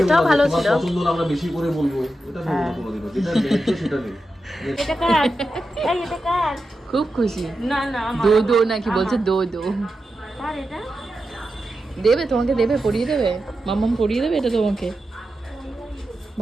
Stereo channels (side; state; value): both; normal; correlation 0.90